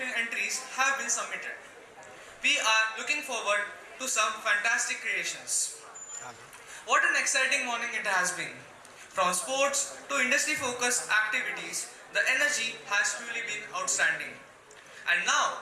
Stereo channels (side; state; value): both; identical; correlation 1.00